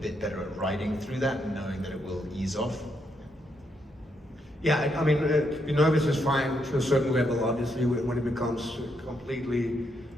better at riding through that and knowing that it will ease off. Yeah, I mean, to be nervous is fine to a certain level, obviously, when it becomes completely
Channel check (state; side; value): normal; both; correlation 0.78